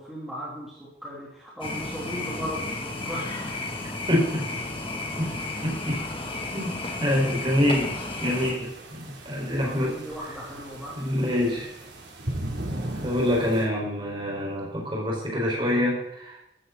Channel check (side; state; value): both; normal; correlation 0.58